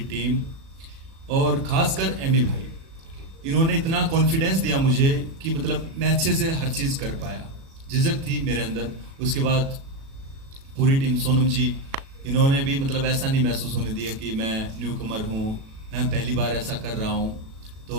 टीम, और खासकर एमी भाई, इन्होंने इतना कॉन्फिडेंस दिया मुझे कि मतलब मैं अच्छे से हर चीज़ कर पाया। झिझक थी मेरे अंदर, उसके बाद पूरी टीम, सोनम जी, इन्होंने भी मतलब ऐसा नहीं महसूस होने दिया कि मैं न्यू कमर हूँ, मैं पहली बार ऐसा कर रहा हूँ।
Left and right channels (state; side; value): late; left; 37 ms